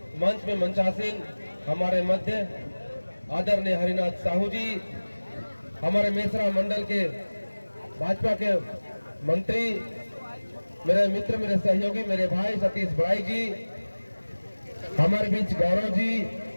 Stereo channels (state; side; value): inverted; both; correlation -1.00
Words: मंच में मंचासीन हमारे मध्य आदरणीय हरिनाथ साहू जी, हमारे मेसरा मंडल के भाजपा के मंत्री, मेरे मित्र, मेरे सहयोगी, मेरे भाई सतीश बड़ाई जी, हमारे बीच गौरव जी,